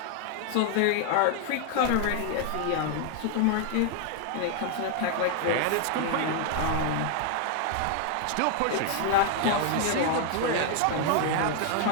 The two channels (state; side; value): different; both; correlation 0.00